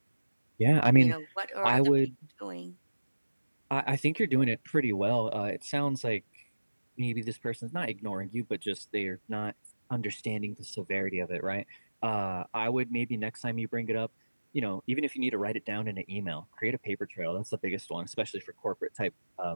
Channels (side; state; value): both; inverted; correlation -1.00